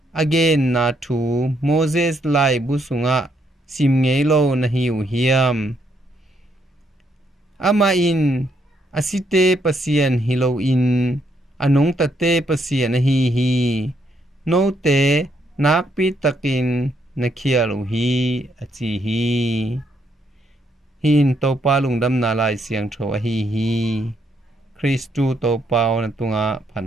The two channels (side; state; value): both; normal; correlation 0.74